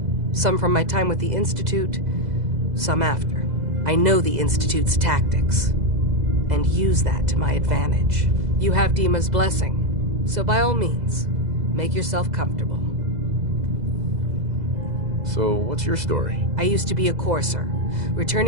Some from my time with the Institute, some after. I know the Institute's tactics, and use that to my advantage. You have Dima's blessing, so by all means, make yourself comfortable. So, what's your story? I used to be a courser,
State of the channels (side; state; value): left; late; 2.0 ms